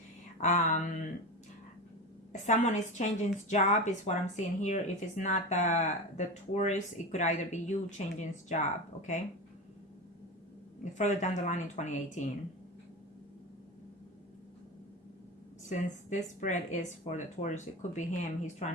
Someone is changing his job is what I'm seeing here. If it's not the Taurus, it could either be you changing his job. Okay. Further down the line in 2018. Since this spread is for the Taurus, it could be him. He's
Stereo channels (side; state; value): both; normal; correlation 0.23